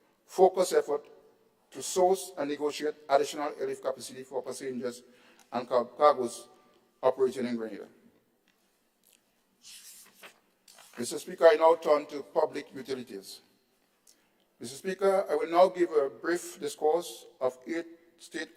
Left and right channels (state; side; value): identical; both; correlation 1.00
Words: focused effort to source and negotiate additional airlift capacity for passengers and cargoes operating in Grenada. Mr. Speaker, I now turn to public utilities. Mr. Speaker, I will now give a brief discourse of 8